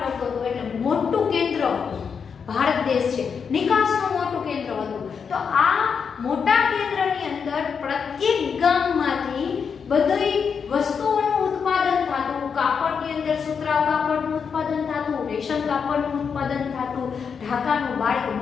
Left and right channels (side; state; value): right; quieter; 6.3 dB